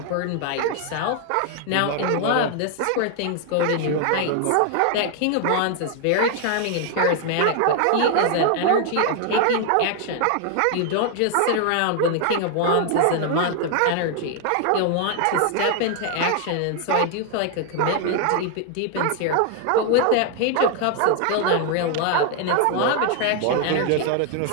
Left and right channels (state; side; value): different; both; correlation 0.00